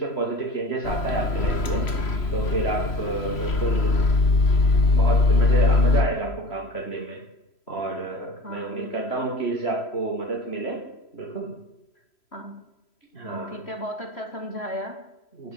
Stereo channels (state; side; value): late; right; 3.0 ms